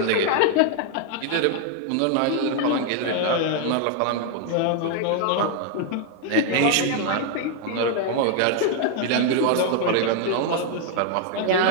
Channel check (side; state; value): both; different; correlation 0.00